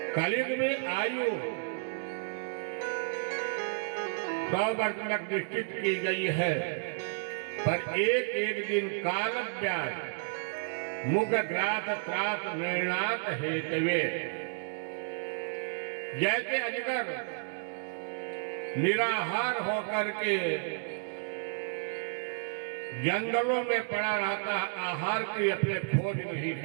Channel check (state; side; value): silent; left; digital silence